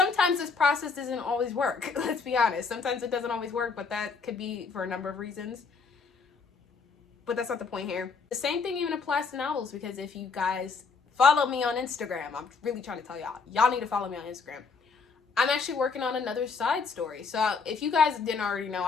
this process doesn't always work. Let's be honest. Sometimes it doesn't always work, but that could be for a number of reasons. But that's not the point here. The same thing even applies to novels, because if you guys follow me on Instagram, I'm really trying to tell y'all need to follow me on Instagram. I'm actually working on another side story. So if you guys didn't already know,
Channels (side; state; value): right; quieter; 4.9 dB